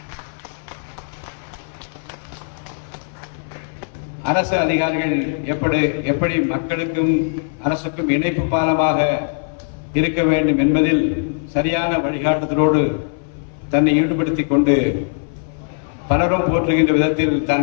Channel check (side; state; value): right; silent; 60 dB below the other